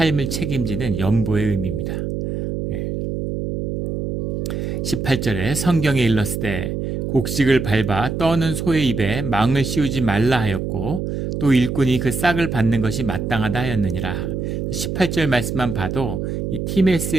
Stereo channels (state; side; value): noise; right; hum, 2 dB below the sound